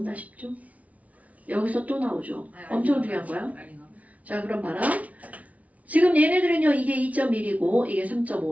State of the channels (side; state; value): left; late; 0.069 ms